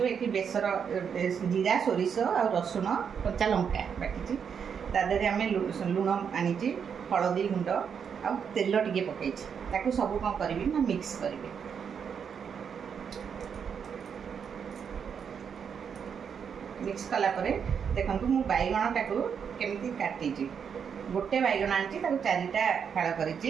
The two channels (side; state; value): left; quieter; 7.1 dB